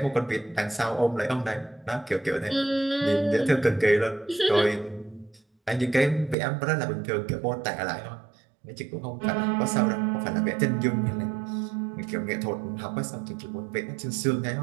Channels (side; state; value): left; drops out; at 6.4 s